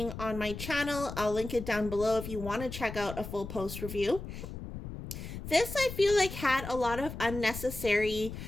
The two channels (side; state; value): left; noise; rumble, 9 dB below the sound